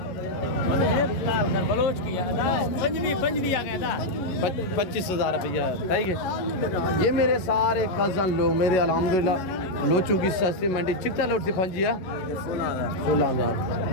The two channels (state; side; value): late; right; 11 ms